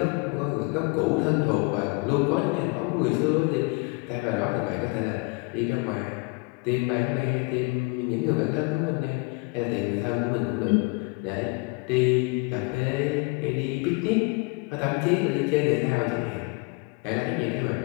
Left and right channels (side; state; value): right; quieter; 28.6 dB